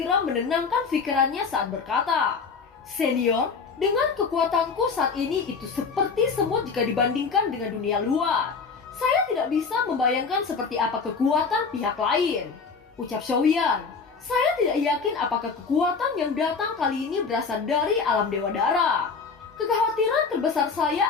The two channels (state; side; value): quieter; right; 5.1 dB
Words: menenangkan pikirannya saat berkata, "Senior, dengan kekuatanku saat ini itu seperti semut jika dibandingkan dengan dunia luar. Saya tidak bisa membayangkan seperti apa kekuatan pihak lain," ucap Xiaoyan. "Saya tidak yakin apakah kekuatan yang datang kali ini berasal dari alam Dewa Darah. Kekhawatiran terbesar